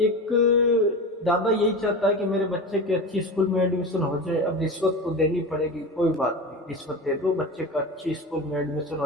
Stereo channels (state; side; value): normal; both; correlation 0.27